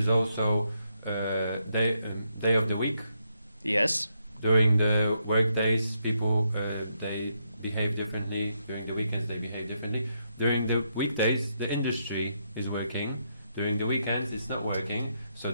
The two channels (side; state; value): both; inverted; correlation -0.79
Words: also day of the week. Yes. During the work days, people they behave differently. During the weekends, they behave differently. During the weekdays, the industry is working. During the weekends, it's not working. So